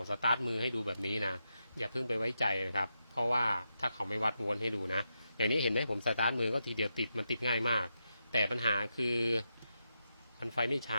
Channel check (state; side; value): inverted; both; correlation -0.86